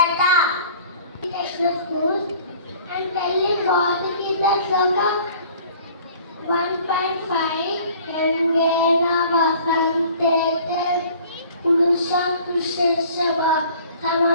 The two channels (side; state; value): both; inverted; correlation -0.50